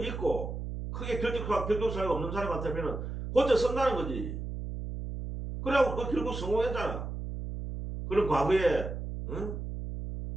있고 크게 결격 사유가 없는 사람 같으면 고쳐 쓴다는 거지. 그래갖고 그 결국 성공했잖아. 그런 과거에 응?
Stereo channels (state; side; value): noise; right; hum, 6 dB below the sound